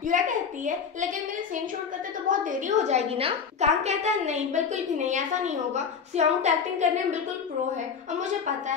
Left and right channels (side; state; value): right; quieter; 6.4 dB